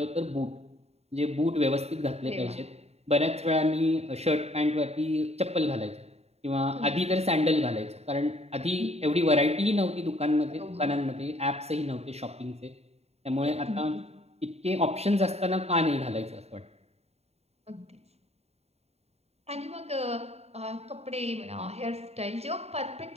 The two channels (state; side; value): late; left; 0.30 ms